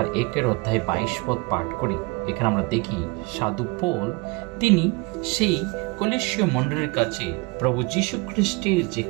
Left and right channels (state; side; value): quieter; left; 26.4 dB